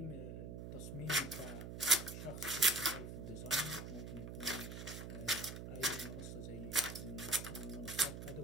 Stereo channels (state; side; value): noise; right; hum, 8 dB below the sound